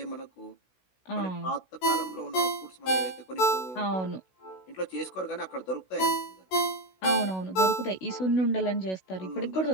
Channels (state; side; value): late; right; 16 ms